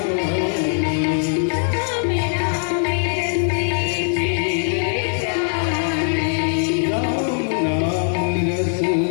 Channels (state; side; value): silent; right; 57 dB below the other